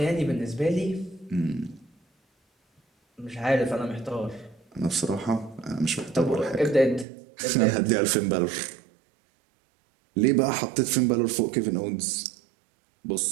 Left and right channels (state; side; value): drops out; left; at 7.1 s